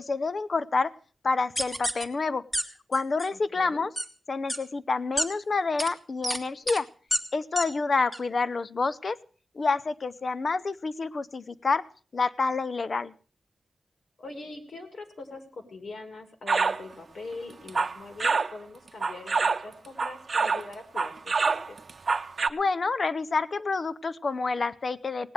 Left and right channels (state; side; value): normal; both; correlation 0.90